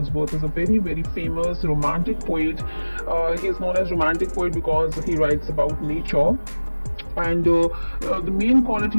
is a very famous romantic poet. He is known as romantic poet because he writes about nature. And the main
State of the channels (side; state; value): both; inverted; correlation -1.00